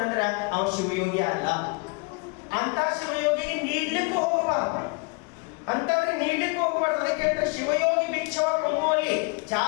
ಅವ ಶಿವಯೋಗಿ ಅಲ್ಲ. ಅಂತ ಶಿವಯೋಗಿಗೆ ನೀಡ್ಲಿಕ್ಕೆ ಹೋಗಬಾರ್ದು, ಅಂತವ್ರಿಗೆ ನೀಡ್ಲಿಕ್ಕೆ ಹೋಗಬಾರ್ದು. ಅದಕ್ಕೆ ಹೇಳ್ತಾರೆ ಶಿವಯೋಗಿ ಭಿಕ್ಷವ ಕೊಂಬುವಲ್ಲಿ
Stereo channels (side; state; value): right; quieter; 30.9 dB